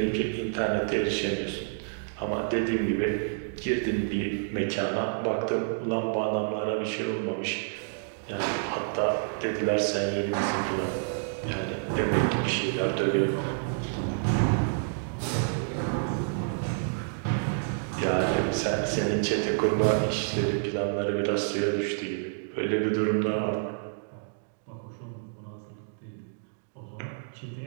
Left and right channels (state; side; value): silent; left; digital silence